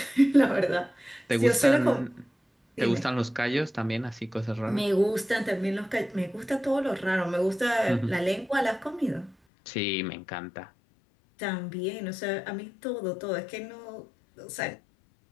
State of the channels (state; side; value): drops out; right; at 9.3 s